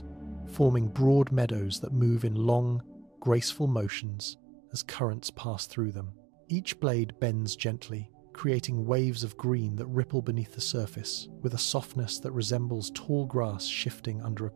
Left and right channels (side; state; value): left; drops out; at 3.9 s